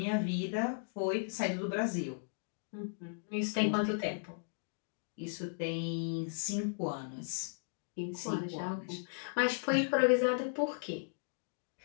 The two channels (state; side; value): silent; right; digital silence